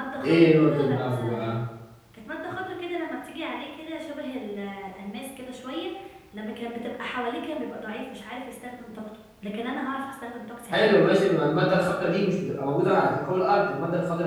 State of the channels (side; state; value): both; identical; correlation 1.00